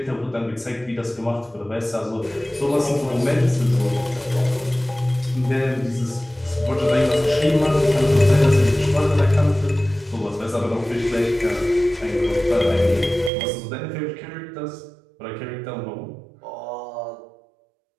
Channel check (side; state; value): left; drops out; at 13.3 s